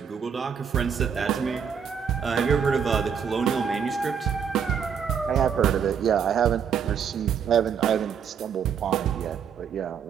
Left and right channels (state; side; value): quieter; left; 7.3 dB